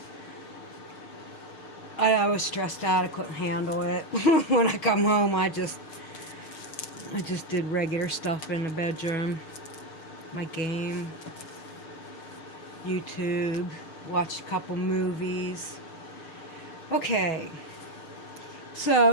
I was stressed out. I couldn't handle it. When I come home I just did regular stuff in the bedroom, my game, YouTube, watched a couple movies. Okay,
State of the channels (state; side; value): late; right; 6.6 ms